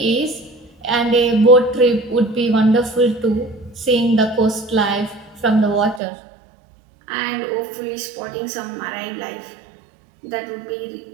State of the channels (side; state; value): left; drops out; at 6.0 s